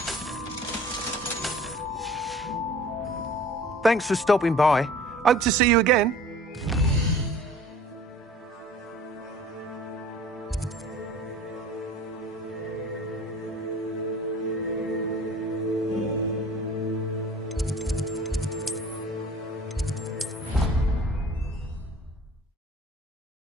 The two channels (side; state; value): both; normal; correlation 0.46